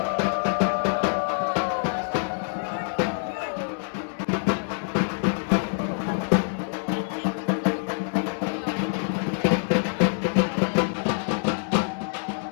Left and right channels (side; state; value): right; silent; digital silence